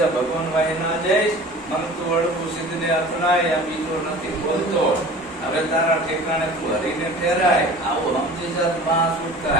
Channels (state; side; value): normal; both; correlation 0.42